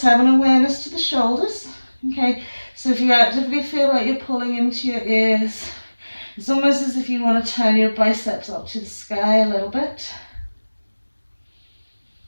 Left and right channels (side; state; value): both; inverted; correlation -1.00